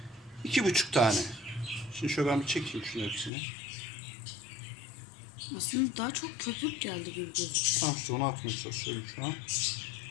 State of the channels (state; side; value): drops out; right; at 3.3 s